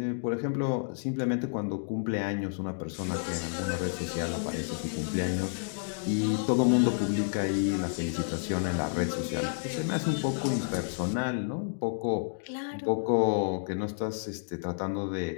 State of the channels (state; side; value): silent; right; digital silence